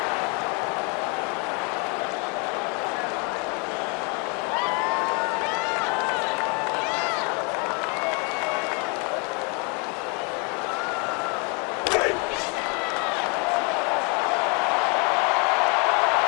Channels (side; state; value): right; quieter; 33.5 dB